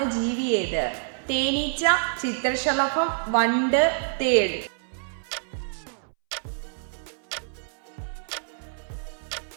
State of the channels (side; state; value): left; silent; 60 dB below the other